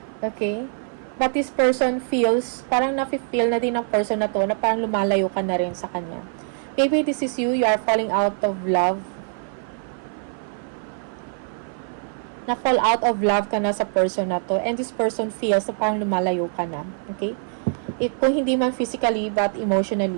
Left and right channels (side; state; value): left; silent; 55 dB below the other